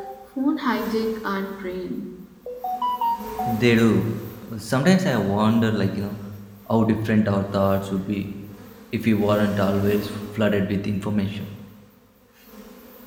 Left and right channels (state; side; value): identical; both; correlation 1.00